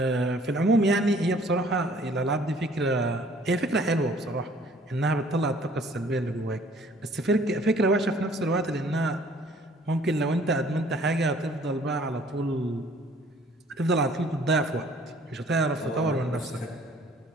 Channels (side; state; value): both; normal; correlation 0.56